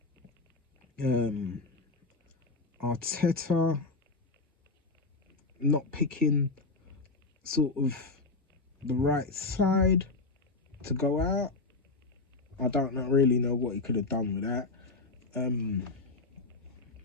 Arteta not picking sort of the right side to go out. I don't really know what he could have done with that.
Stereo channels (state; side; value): quieter; right; 3.6 dB